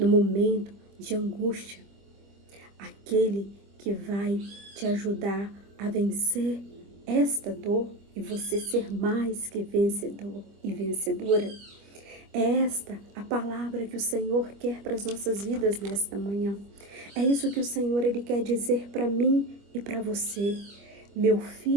momento de angústia, aquele que vai te ajudar a vencer esta dor e você ser mais que vencedor e vencedora. É esta a palavra que o Senhor quer para as nossas vidas nesta manhã. É isso que o Senhor ele quer dizer para mim e para você. Meu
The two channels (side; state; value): left; late; 25 ms